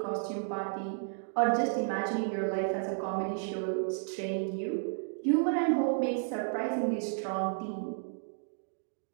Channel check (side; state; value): left; silent; digital silence